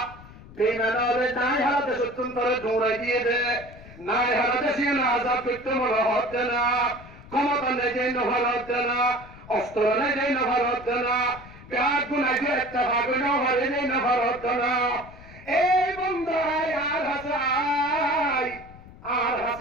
বেইমানারে নাই হারাতে সত্যন তোরে দৌড়াই দিয়ে দে, নাই হারাতে সে না আজাদ করতে মনে হচ্ছে না, ক্ষমতা নেই যে নভার হচ্ছে না, অস্ত্র নেই যে নভার হচ্ছে না, ব্যাগ গুনাই যে একটা ভাগ নভারে নেই নভার হচ্ছে না। এই বন্ধাই আর হাসে আয়, আর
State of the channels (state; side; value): noise; left; rumble, 19 dB below the sound